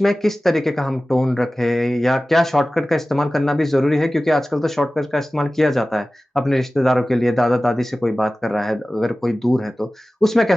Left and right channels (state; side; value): normal; both; correlation 0.96